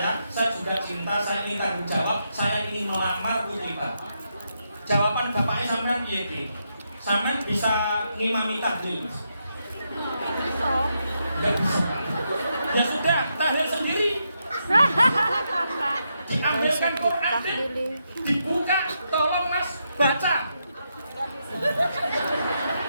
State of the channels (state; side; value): inverted; both; correlation -0.82